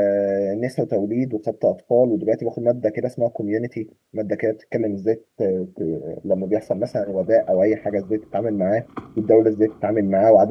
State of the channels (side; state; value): both; identical; correlation 1.00